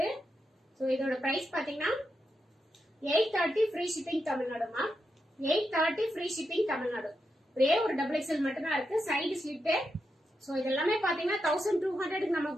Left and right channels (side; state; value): both; normal; correlation 0.86